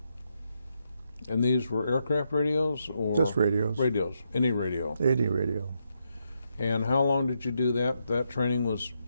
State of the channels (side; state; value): both; inverted; correlation -0.80